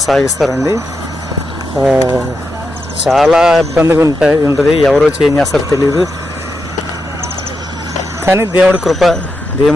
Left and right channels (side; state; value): both; normal; correlation 0.86